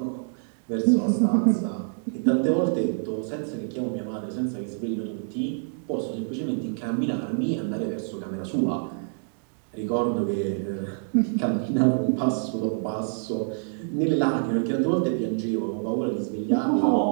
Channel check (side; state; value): left; silent; digital silence